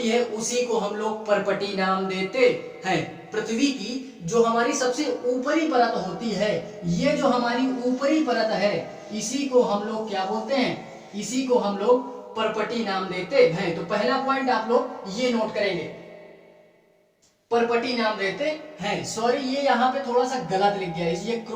है उसी को हम लोग परपटी नाम देते हैं। पृथ्वी की जो हमारी सबसे ऊपरी परत होती है, ये जो हमारी ऊपरी परत है इसी को हम लोग क्या बोलते हैं? इसी को हम लोग परपटी नाम देते हैं। तो पहला पॉइंट आप लोग ये नोट करेंगे, परपटी नाम देते हैं। सॉरी, ये यहाँ पे थोड़ा सा गलत लिख गया, ये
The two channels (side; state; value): both; identical; correlation 1.00